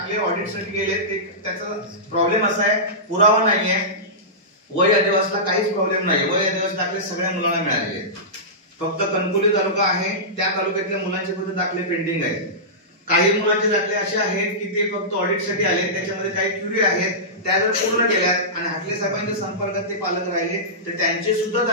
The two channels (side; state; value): both; normal; correlation -0.17